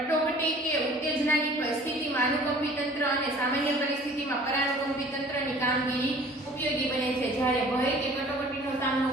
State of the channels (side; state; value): both; normal; correlation 0.49